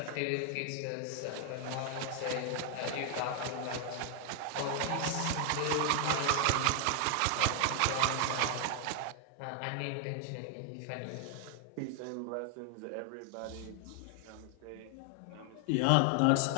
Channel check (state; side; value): different; both; correlation 0.00